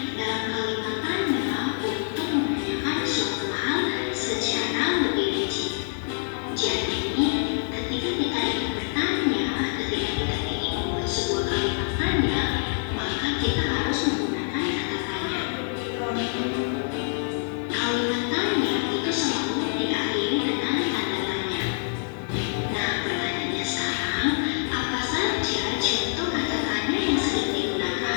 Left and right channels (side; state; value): right; silent; digital silence